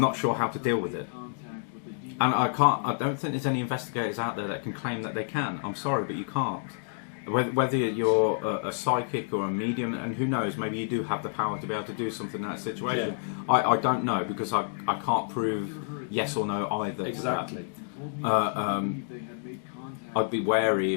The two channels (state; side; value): silent; right; digital silence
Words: sure how to deal with it. And I don't think there's any investigators out there that can claim that they can. I'm sorry, but you can't. Whether you're a psychic or a medium, and who knows, maybe you do have the power to be able to do something in that situation. Yeah. I don't know, because I can't prove yes or no either. Exactly. I'd be wary